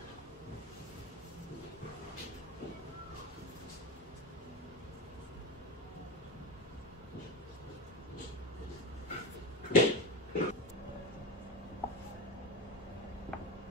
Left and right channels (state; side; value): normal; both; correlation 0.21